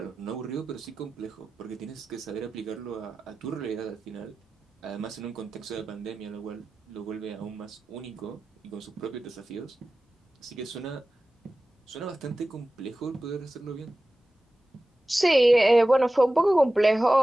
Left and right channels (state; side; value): normal; both; correlation 0.95